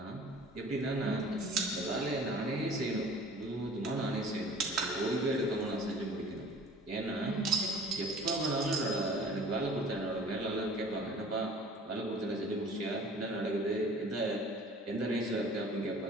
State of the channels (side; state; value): both; normal; correlation 0.47